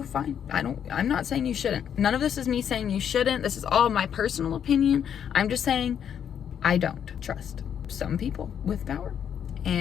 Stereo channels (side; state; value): right; quieter; 8.6 dB